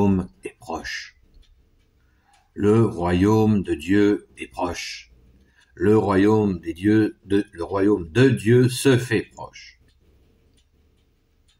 est proche. Le royaume de Dieu est proche. Le royaume de Dieu se fait proche.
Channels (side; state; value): both; identical; correlation 1.00